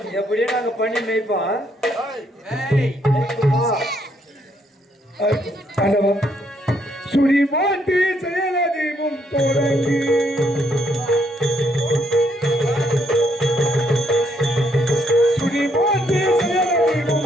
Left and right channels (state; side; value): normal; both; correlation 0.72